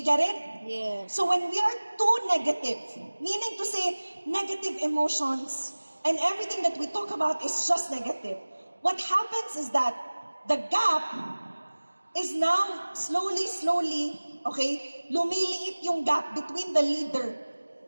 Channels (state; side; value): inverted; both; correlation -1.00